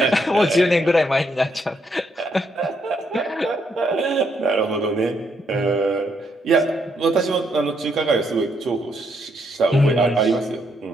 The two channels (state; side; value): normal; both; correlation 0.75